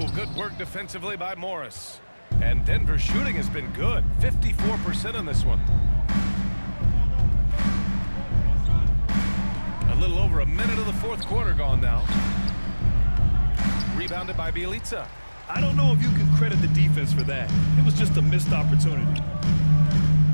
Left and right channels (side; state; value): both; inverted; correlation -1.00